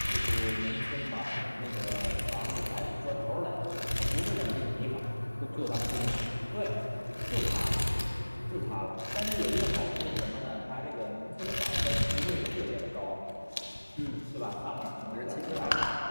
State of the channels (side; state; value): both; inverted; correlation -1.00